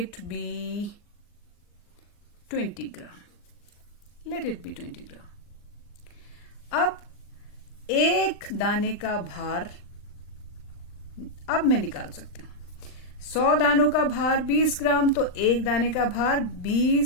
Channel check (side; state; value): right; late; 39 ms